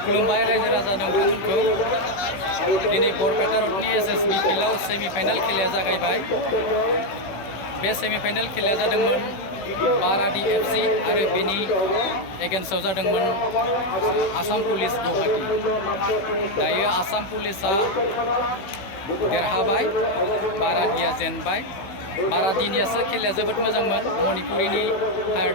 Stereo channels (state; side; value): late; right; 16 ms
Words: खुलुमबाय रायजो राजा नोंथांमोनखौ दिनै बरपेटा रडनि एसएसबि फिल्डआव सेमिफाइनाल खेलाया जागायबाय। बे सेमिफाइनाल खेलाया जादोंमोन बाराडि एफसि आरो बेनि एगेन्स्टआव जादोंमोन आसाम पुलिस गुवाहाटी। दायो आसाम पुलिसा देरहाबाय, बाराडिया जेनबाय। बाराडिनियासो खेलाया जोबोद मोजांमोन, मणिपुरिनि हायार